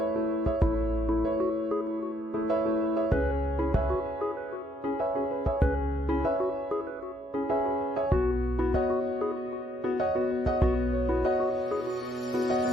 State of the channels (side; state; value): both; normal; correlation 0.71